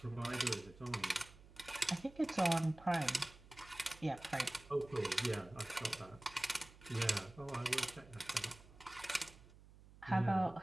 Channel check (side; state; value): right; noise; hum, 21 dB below the sound